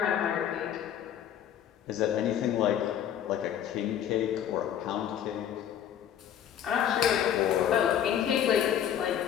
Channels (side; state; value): right; quieter; 9.8 dB